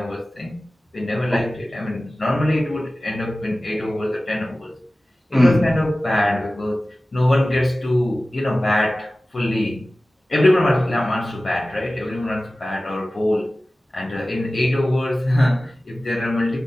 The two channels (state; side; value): normal; both; correlation 0.96